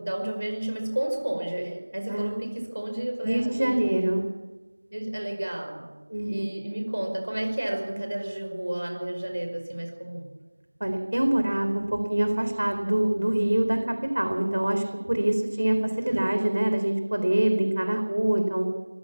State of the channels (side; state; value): both; inverted; correlation -1.00